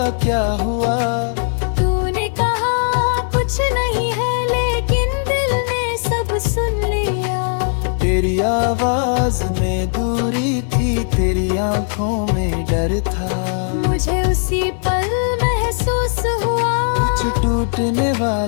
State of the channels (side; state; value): right; silent; digital silence